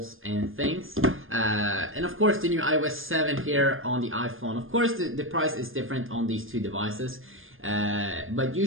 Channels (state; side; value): late; left; 0.59 ms